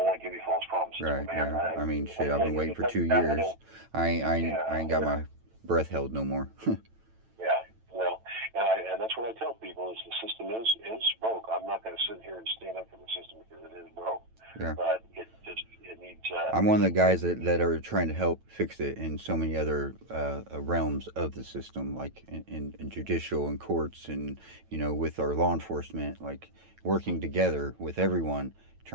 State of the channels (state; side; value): late; left; 9.0 ms